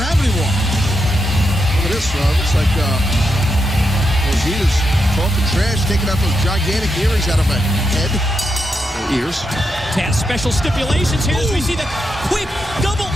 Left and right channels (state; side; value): normal; both; correlation 0.83